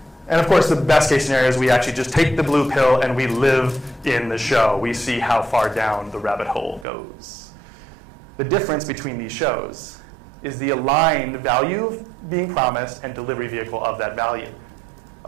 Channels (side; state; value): left; drops out; at 6.9 s